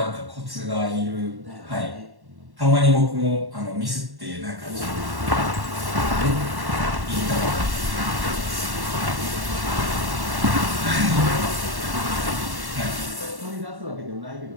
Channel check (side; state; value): left; late; 1.1 ms